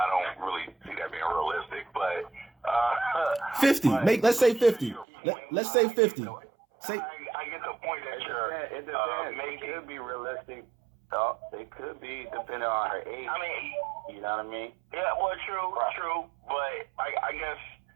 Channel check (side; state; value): left; drops out; at 5.1 s